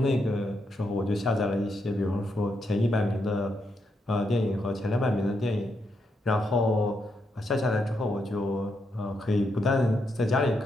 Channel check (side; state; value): both; normal; correlation 0.81